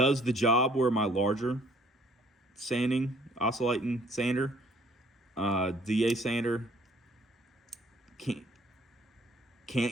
the job where my larger sanding, oscillating sander, DA sander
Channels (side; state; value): both; normal; correlation 0.60